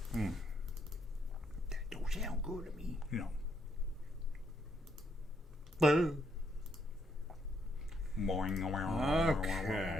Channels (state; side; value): normal; both; correlation 0.74